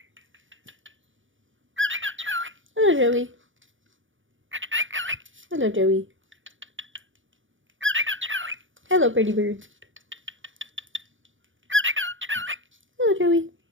Hello, Joey. Hello, Joey. Hello, pretty bird. Hello, Joey.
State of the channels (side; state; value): left; late; 0.57 ms